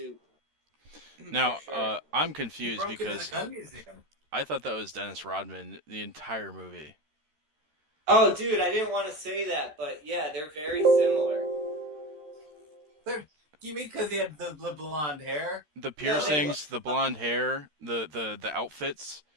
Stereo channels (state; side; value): late; left; 13 ms